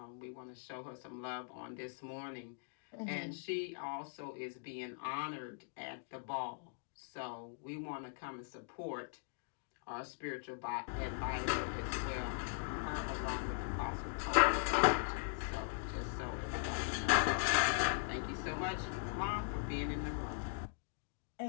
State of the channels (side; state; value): right; silent; digital silence